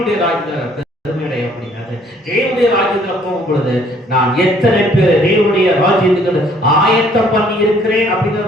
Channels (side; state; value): both; normal; correlation 0.61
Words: ராஜ்யத்துல பெருமை அடைய முடியாது. தேவனுடைய ராஜ்யத்துல போகும் பொழுது நான் எத்தனை பேர் தேவனுடைய ராஜ்யத்துக்கு ஆயத்தம் பண்ணி இருக்கிறேன்